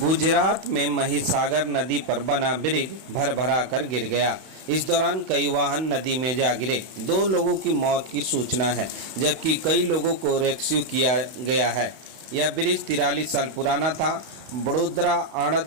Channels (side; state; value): left; late; 31 ms